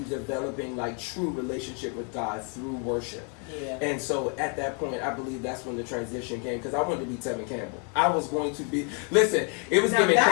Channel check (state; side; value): quieter; right; 38.7 dB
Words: developing like true relationship with God through worship. Yeah. And so at that point, I believe that's when the transition came, because I wanted to be Tevin Campbell. I was going to be, listen, it was giving